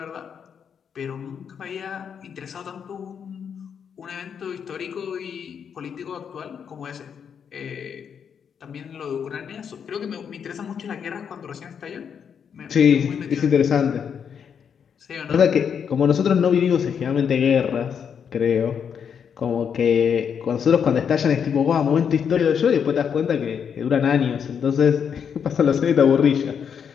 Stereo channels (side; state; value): right; quieter; 7.4 dB